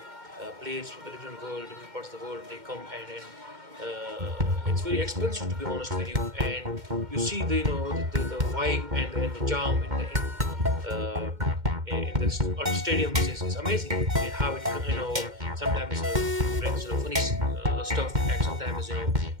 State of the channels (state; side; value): late; left; 2.1 ms